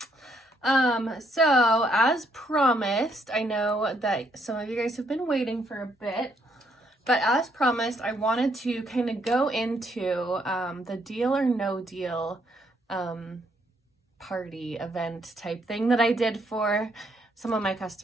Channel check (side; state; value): both; normal; correlation 0.72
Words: So as promised, I know that some of you guys have been waiting for a bit, but as promised, I wanted to kind of go into the deal or no deal party event type thing that I did for some of my